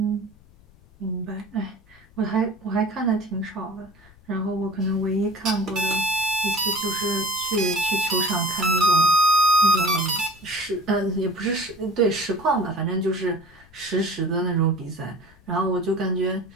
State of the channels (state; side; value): noise; left; rumble, 27 dB below the sound